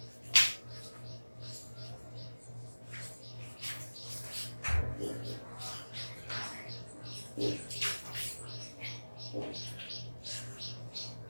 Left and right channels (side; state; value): both; inverted; correlation -1.00